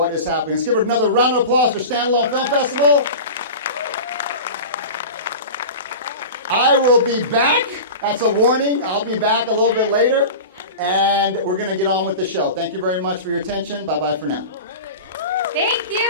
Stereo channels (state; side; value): inverted; both; correlation -0.31